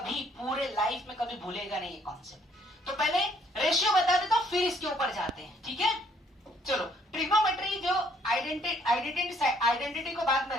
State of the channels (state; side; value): normal; both; correlation 0.65